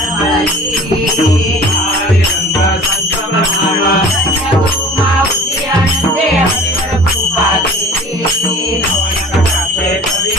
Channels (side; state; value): both; normal; correlation 0.44